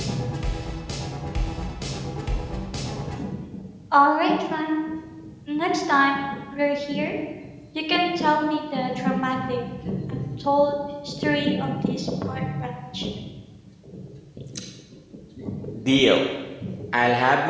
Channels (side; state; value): both; identical; correlation 1.00